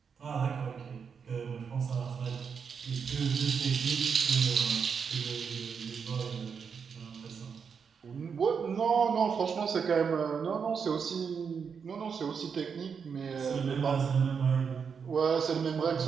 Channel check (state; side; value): quieter; left; 6.3 dB